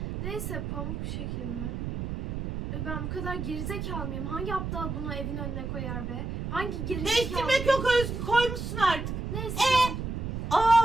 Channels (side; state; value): right; noise; rumble, 4 dB below the sound